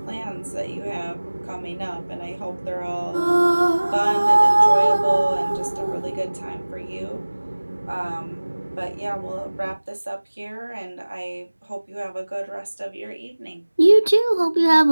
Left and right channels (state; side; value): inverted; both; correlation -1.00